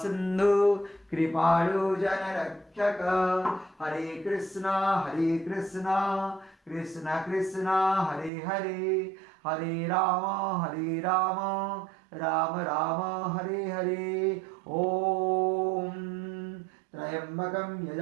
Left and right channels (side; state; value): left; drops out; at 8.3 s